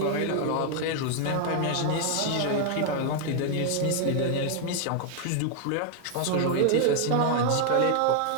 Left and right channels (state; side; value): different; both; correlation 0.00